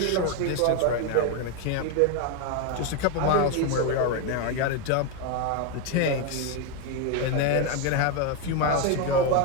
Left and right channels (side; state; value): both; different; correlation 0.02